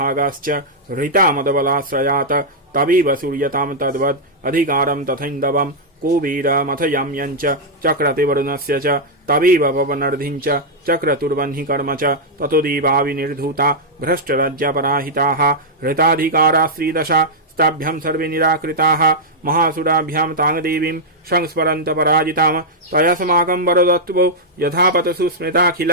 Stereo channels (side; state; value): both; normal; correlation -0.06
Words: हृतामदबलाश्रयात् तवेव सूर्यतां तद्वद् अधिकारं तथैन्दवम् कुबेरमथयाम्यञ्च चक्रते वरुणस्य च तवेव पवनर्धिञ्च चक्रतुर्वह्नि कर्म च ततो देवा विनिर्धूता भ्रष्टराज्यपराहिताः हृताधिकारा श्रीदशा ताभ्यां सर्वे निराकृताः महासुराभ्यां तां देवीं संस्मरन्त पराजितां तयास्माकं वरदत्वो यथापतसु